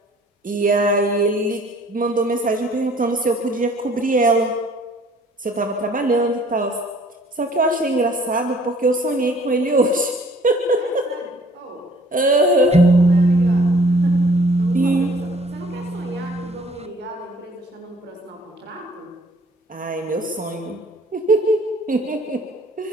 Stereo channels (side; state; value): both; normal; correlation 0.56